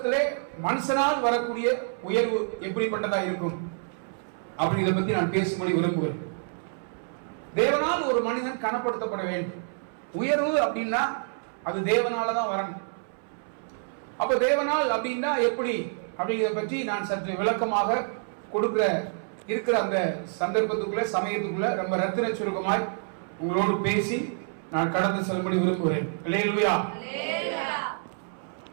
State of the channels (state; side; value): silent; left; 60 dB below the other